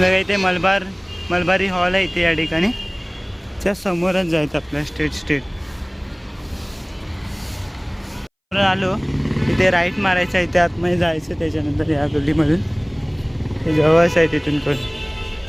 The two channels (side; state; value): both; identical; correlation 1.00